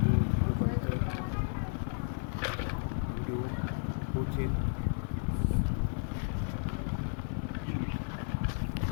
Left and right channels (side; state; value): right; silent; digital silence